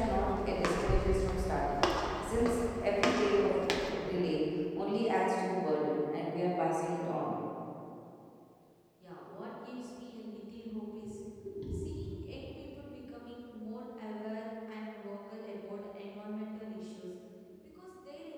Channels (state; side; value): identical; both; correlation 1.00